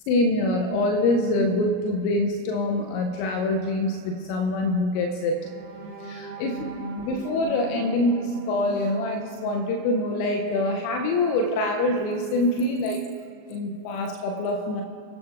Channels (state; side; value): late; right; 38 ms